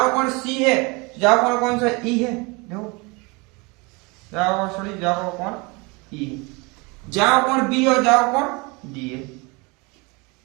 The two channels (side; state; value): left; quieter; 27.6 dB